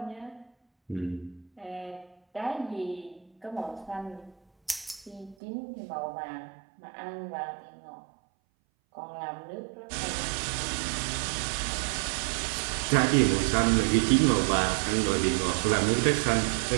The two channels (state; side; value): drops out; left; at 5.4 s